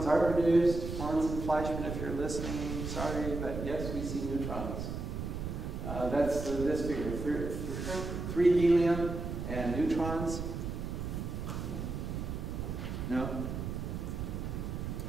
are produced. Pons and Fleischmann, if you're listening, sorry, but yes, we see neutrons. That's this figure, 3 helium and neutrons. No?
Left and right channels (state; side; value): noise; right; rumble, 5 dB below the sound